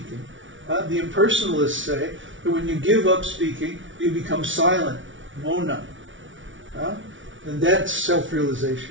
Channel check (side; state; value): left; late; 0.56 ms